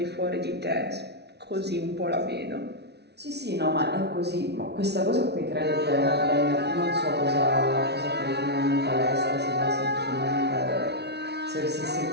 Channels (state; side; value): late; left; 0.49 ms